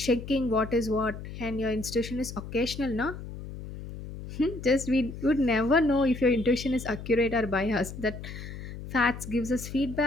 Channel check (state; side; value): noise; left; hum, 11 dB below the sound